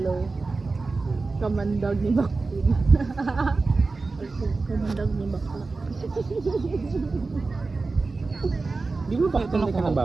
Kamandag ni Baktin. Kamandag ni Bakla. Di mo bakit ka ng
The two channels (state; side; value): quieter; left; 3.8 dB